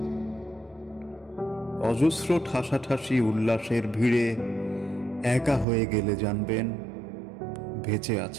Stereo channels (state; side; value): drops out; left; at 5.7 s